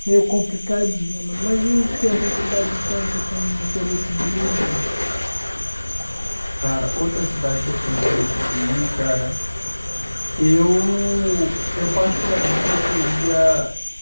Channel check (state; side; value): inverted; both; correlation -1.00